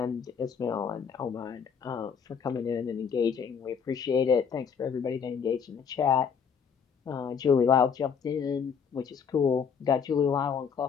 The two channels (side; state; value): right; quieter; 6.7 dB